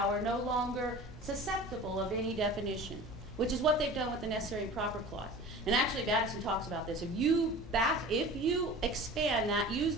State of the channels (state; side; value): normal; both; correlation 0.38